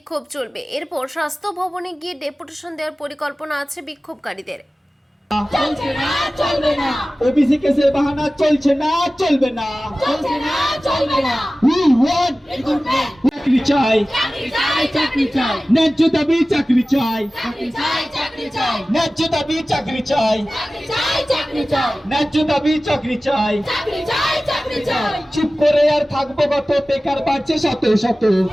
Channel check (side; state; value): both; normal; correlation 0.96